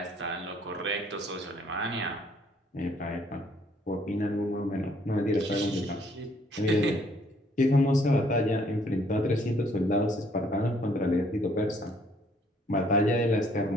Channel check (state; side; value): normal; both; correlation 0.64